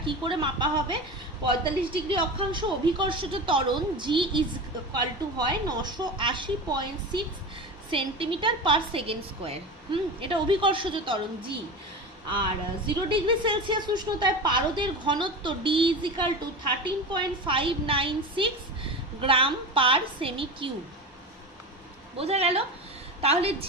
কি করে মাপা হবে? ৪৫ ডিগ্রি অক্ষাংশ অভিকর্ষজ ত্বরণ জি ইজ ইকুয়াল টু হয় ৯৮০.৬ সেন্টিমিটার পার সেকেন্ড স্কোয়ার। এটা অভিকর্ষজ ত্বরণ জি। আর 0 ডিগ্রি সেলসিয়াস উষ্ণতায় পারদের ঘনত্ব D is equal to 13.596 gram per semi cube. বোঝা গেল? তাহলে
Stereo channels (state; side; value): normal; both; correlation 0.27